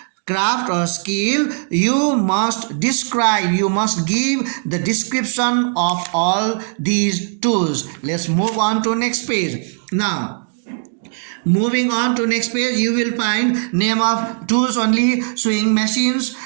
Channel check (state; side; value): silent; left; 59 dB below the other